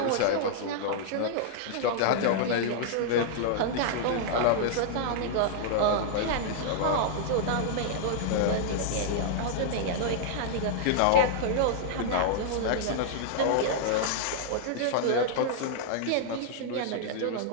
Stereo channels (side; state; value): both; different; correlation -0.01